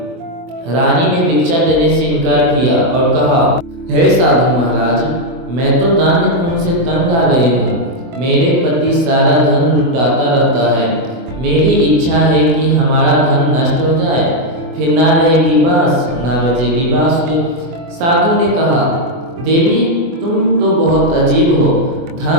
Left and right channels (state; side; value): late; left; 24 ms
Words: रानी ने भिक्षा देने से इनकार किया और कहा, हे साधु महाराज, मैं तो दान्य पुण्य से तंग आ गई हूँ। मेरे पति सारा धन लुटाता रहता है। मेरी इच्छा है कि हमारा धन नष्ट हो जाए, फिर ना रहेगी बांस ना बजेगी बांसुरी। साधु ने कहा, देवी तुम तो बहुत अजीब हो।